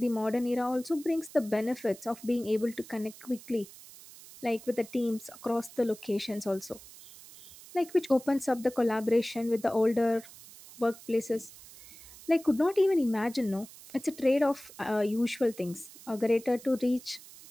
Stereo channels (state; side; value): noise; right; hiss, 19 dB below the sound